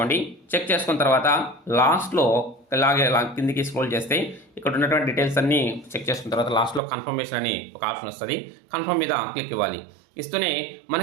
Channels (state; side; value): drops out; left; at 6.8 s